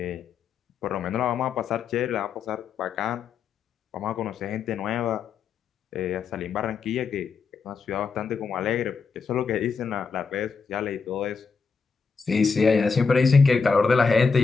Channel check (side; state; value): right; quieter; 5.2 dB